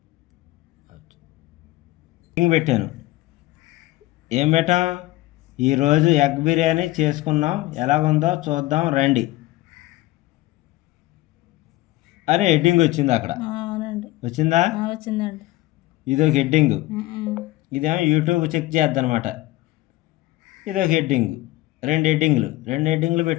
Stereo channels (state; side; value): quieter; right; 18.0 dB